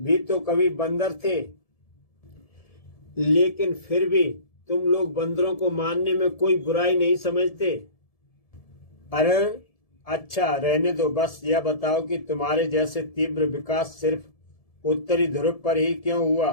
तो कभी बंदर थे, लेकिन फिर भी तुम लोग बंदरों को मारने में कोई बुराई नहीं समझते। अरे अच्छा, रहने दो। बस यह बताओ कि तुम्हारे जैसे तीव्र विकास सिर्फ उत्तरी ध्रुव पर ही क्यों हुआ?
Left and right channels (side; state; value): right; late; 1.7 ms